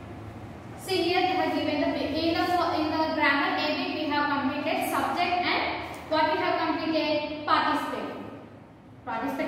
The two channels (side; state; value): both; identical; correlation 1.00